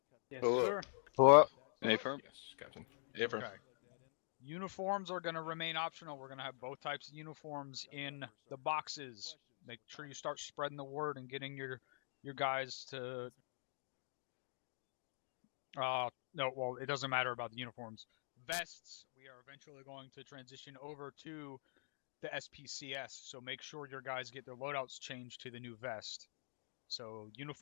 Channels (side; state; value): right; silent; digital silence